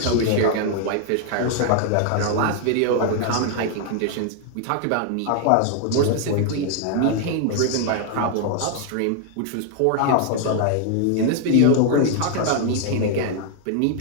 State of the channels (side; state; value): both; different; correlation 0.00